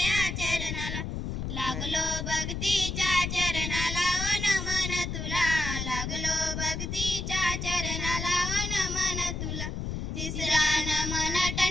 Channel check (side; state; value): left; noise; rumble, 4 dB below the sound